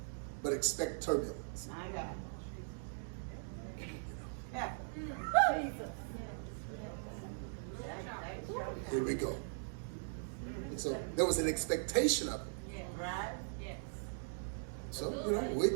but expect turbulence. My God. Here we go. And so there was an expectation of it. Yeah, right? Yes. So, we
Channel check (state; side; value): silent; left; digital silence